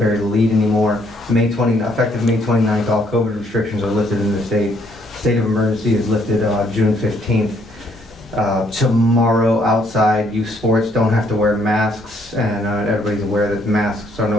the lead anymore. Effective May 29th, all COVID restrictions are lifted in the state. State of emergency is lifted June 15th. Tomorrow, outside, youth sports don't have to wear masks, and everybody's aware that masks are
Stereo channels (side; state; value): both; normal; correlation 0.68